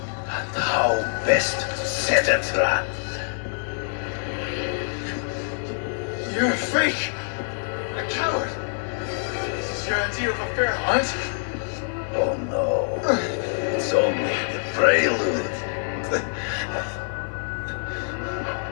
And how best to set a trap. You're a fake, a coward. This is your idea of a fair hunt? Oh no, it's only the prelude.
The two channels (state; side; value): silent; right; digital silence